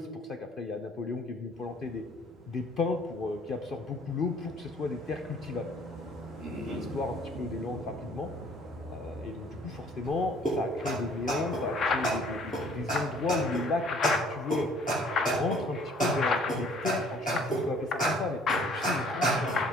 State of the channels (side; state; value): both; normal; correlation 0.57